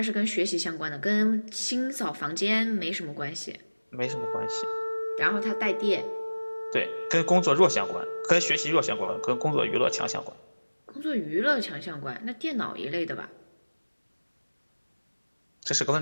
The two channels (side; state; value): both; inverted; correlation -1.00